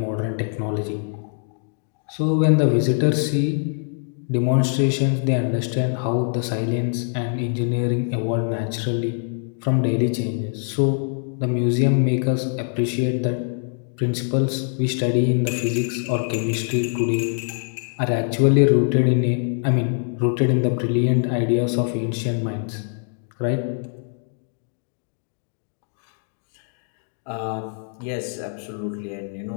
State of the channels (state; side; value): silent; right; 59 dB below the other